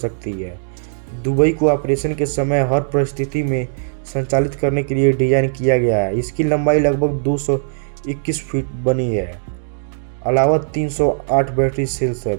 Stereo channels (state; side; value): silent; left; digital silence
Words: है। दुबई को ऑपरेशन के समय हर परिस्थिति में संचालित करने के लिए डिजाइन किया गया है। इसकी लंबाई लगभग 221 फीट बनी है, अलावा 308 बैटरी सेल्स है।